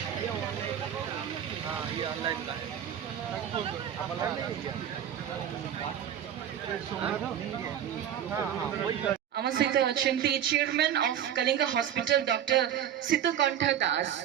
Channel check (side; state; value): left; quieter; 9.9 dB